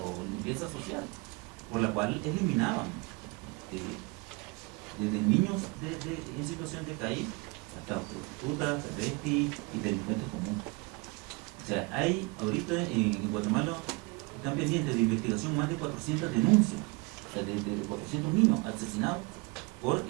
limpieza social, por la cual eliminaban desde niños en situación de calle hasta prostitutas, travestis y delincuentes comunes. O sea, hay ahorita en Guatemala están pendientes de investigación más de 400 denuncias, o sea, de 400 niños asesinados por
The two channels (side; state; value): left; quieter; 27.4 dB